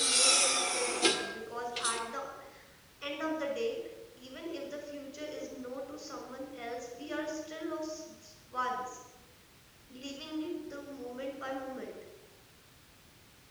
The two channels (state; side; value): identical; both; correlation 1.00